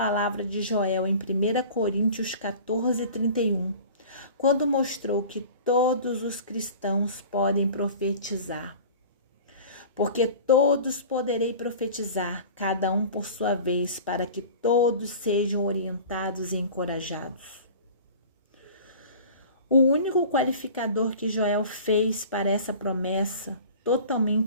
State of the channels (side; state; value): both; inverted; correlation -0.41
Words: de Joel em 1 Coríntios 14:31, quando mostrou que todos os cristãos podem profetizar. Porque todos poderei profetizar, cada um por sua vez, para que todos sejam orientados e encorajados. O único qualificador que Joel fez para essa promessa,